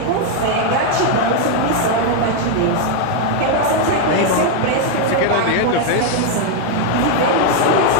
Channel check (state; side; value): different; both; correlation 0.01